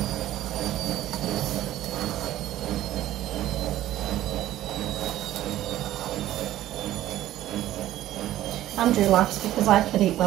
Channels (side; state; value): left; quieter; 13.9 dB